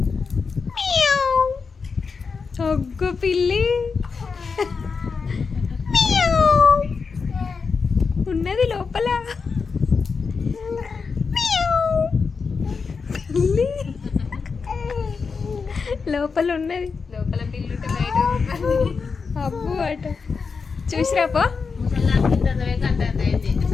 ఒగ్గు పిల్లి ఉన్నది లోపల. పిల్లి లోపల ఉన్నది. లోపల పిల్లి బయట అబ్బు అట చూసిరాపో.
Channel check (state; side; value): quieter; right; 5.1 dB